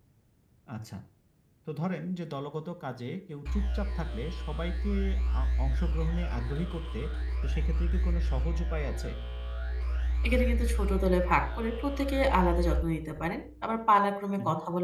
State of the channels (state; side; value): identical; both; correlation 1.00